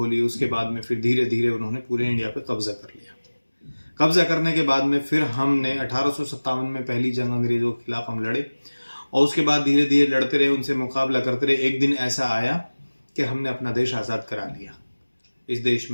उसके बाद में फिर धीरे धीरे उन्होंने पूरे इंडिया पे कब्ज़ा कर लिया। कब्ज़ा करने के बाद में फिर हमने 1857 में पहली जंग अंग्रेज़ों के खिलाफ हम लड़े, और उसके बाद धीरे धीरे लड़ते रहे, उनसे मुकाबला करते रहे। एक दिन ऐसा आया कि हमने अपना देश आज़ाद करा लिया। इस देश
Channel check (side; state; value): both; inverted; correlation -1.00